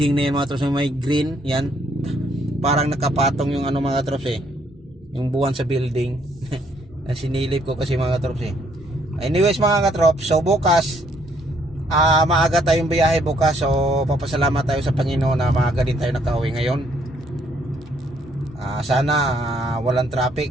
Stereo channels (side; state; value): both; normal; correlation 0.68